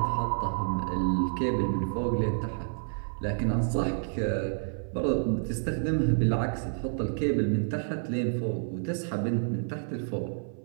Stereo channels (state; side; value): silent; left; 55 dB below the other